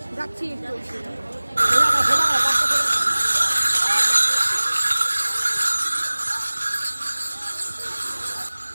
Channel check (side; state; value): both; inverted; correlation -1.00